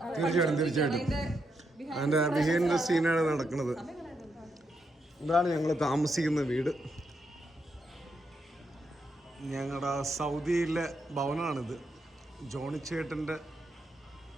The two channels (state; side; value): normal; both; correlation 0.81